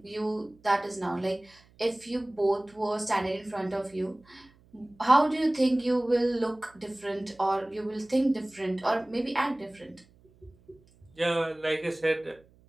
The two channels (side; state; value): right; noise; hum, 29 dB below the sound